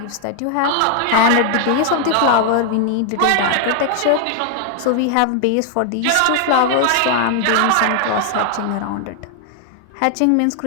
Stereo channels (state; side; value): different; both; correlation 0.00